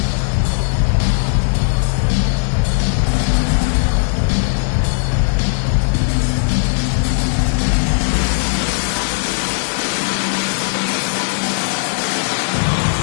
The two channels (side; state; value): right; silent; 68 dB below the other